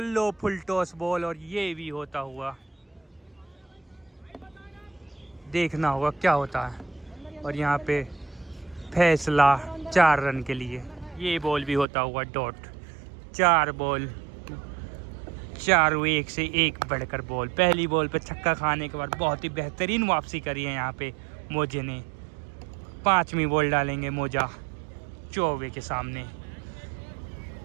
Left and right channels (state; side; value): drops out; left; at 11.9 s